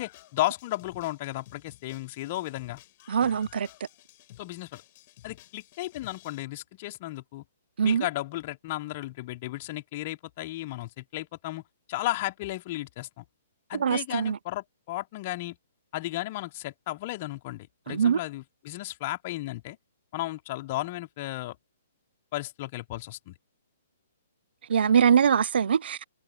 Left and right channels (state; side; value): inverted; both; correlation -0.56